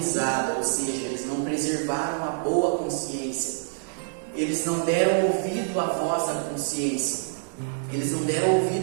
ou seja, eles não preservaram a boa consciência, eles não deram ouvido à voz da consciência, eles não deram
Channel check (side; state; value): left; silent; digital silence